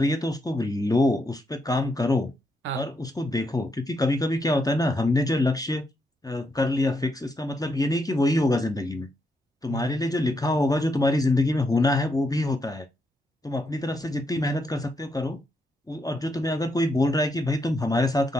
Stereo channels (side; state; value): both; normal; correlation 0.79